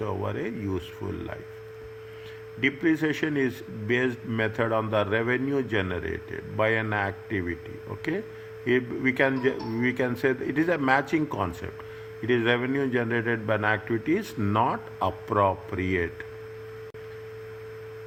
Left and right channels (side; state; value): both; identical; correlation 1.00